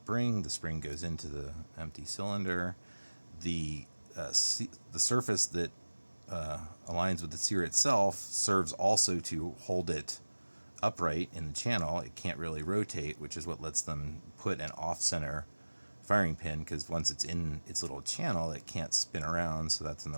The spring goes into the empty cylinder. The surface that aligns with the sear itself serves also to hold it upright in the channel. It can't really rotate, which is what lets them put an off-center firing pin, because once it's in its little channel, it can't spin around, so that's in the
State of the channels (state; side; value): inverted; both; correlation -1.00